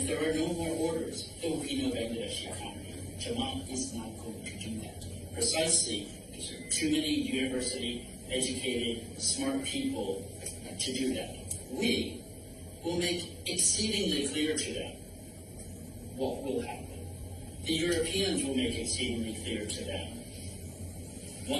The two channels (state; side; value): identical; both; correlation 1.00